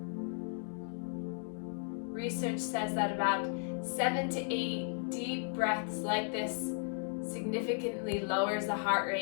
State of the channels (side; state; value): right; silent; 54 dB below the other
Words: Research says that about 7 to 8 deep breaths like this significantly lowers the heart